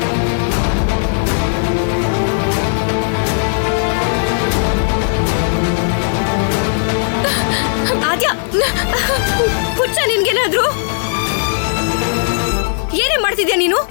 ಆದ್ಯಾ, ಹುಚ್ಚ ನಿನ್ಗೇನಾದ್ರು? ಏನೇ ಮಾಡ್ತಿದ್ಯಾ ನೀನು?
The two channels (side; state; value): right; silent; 67 dB below the other